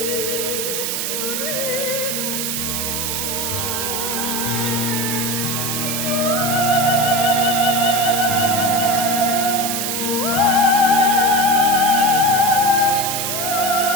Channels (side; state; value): right; noise; hiss, 1 dB below the sound